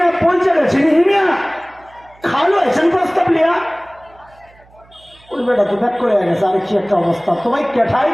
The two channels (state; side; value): noise; right; hum, 29 dB below the sound